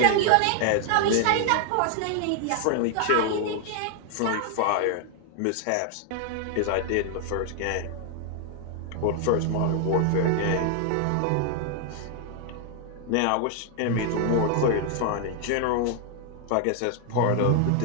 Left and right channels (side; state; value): both; different; correlation 0.00